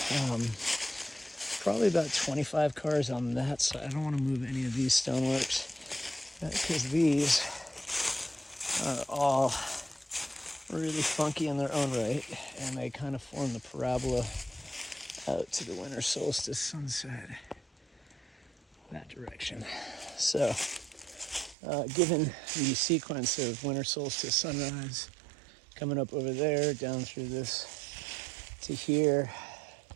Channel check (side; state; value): left; drops out; at 21.6 s